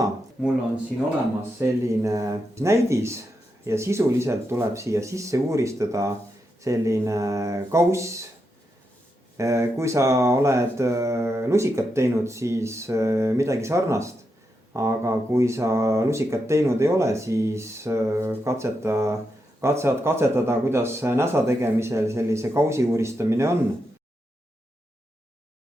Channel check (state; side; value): normal; both; correlation 0.85